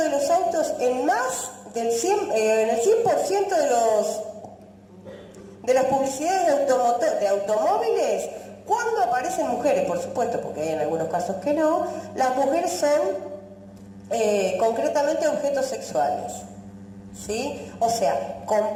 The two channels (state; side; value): identical; both; correlation 1.00